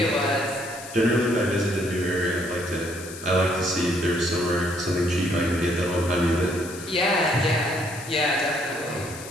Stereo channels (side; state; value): left; noise; hiss, 14 dB below the sound